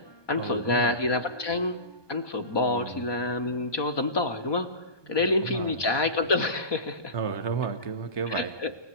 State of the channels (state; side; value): late; right; 1.2 ms